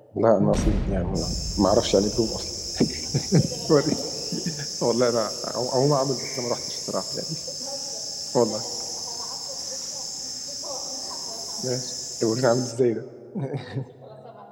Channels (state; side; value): identical; both; correlation 1.00